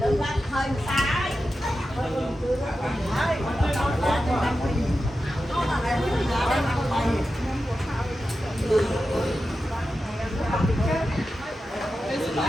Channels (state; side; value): normal; both; correlation 0.91